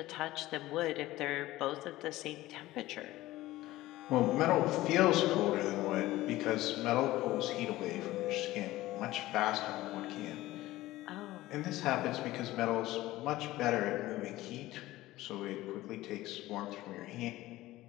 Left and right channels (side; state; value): right; quieter; 16.9 dB